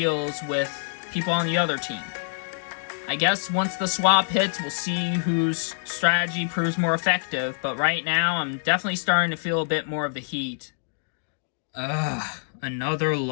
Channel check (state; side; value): silent; right; digital silence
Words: with people on the other team. I guess once the swap hits, we'll see whose strategy proves more effective, but right now, I'm definitely starting to feel a bit more of the heat. Another